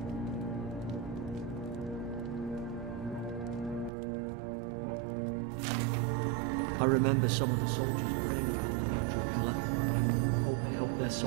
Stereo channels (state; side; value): drops out; left; at 3.9 s